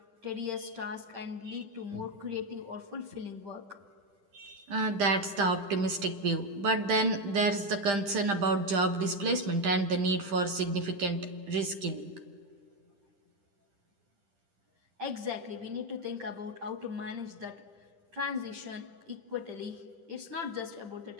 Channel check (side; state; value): left; late; 10 ms